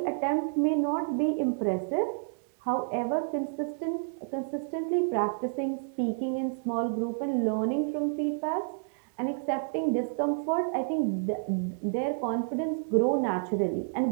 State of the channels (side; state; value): left; silent; digital silence